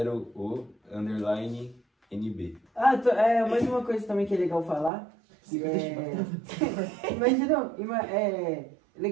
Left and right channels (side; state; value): left; drops out; at 4.9 s